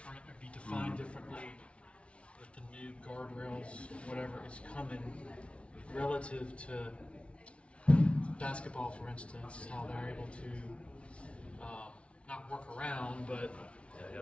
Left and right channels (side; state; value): right; late; 0.061 ms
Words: or be defined differently with the new guardrails, whatever is coming relative to basketball, for instance, how they're able to not work around, but